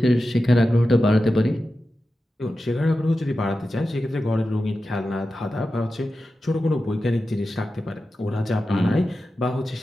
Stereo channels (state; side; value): normal; both; correlation 0.92